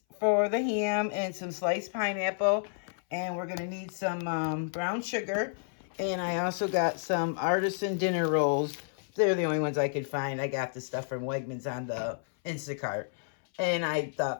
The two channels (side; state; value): right; silent; 57 dB below the other